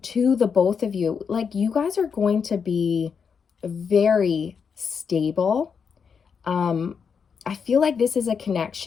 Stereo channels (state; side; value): quieter; right; 6.3 dB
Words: to the both of you. Like you guys are going to be very stable. I feel like this is a